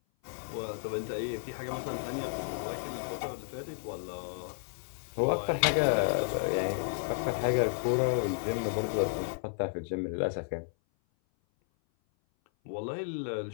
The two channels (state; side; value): silent; right; 56 dB below the other